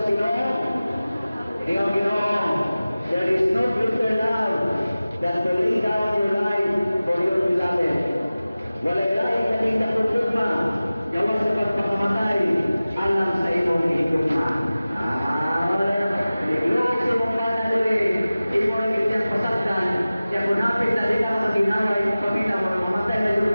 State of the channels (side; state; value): both; inverted; correlation -0.97